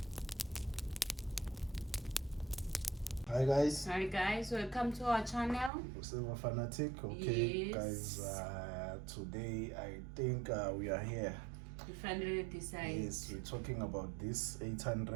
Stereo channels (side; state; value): left; drops out; at 5.7 s